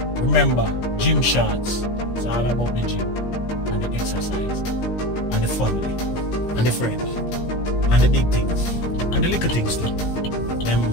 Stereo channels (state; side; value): late; right; 17 ms